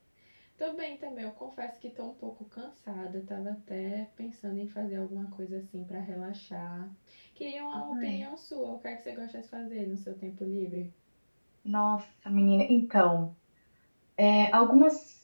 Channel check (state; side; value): inverted; both; correlation -1.00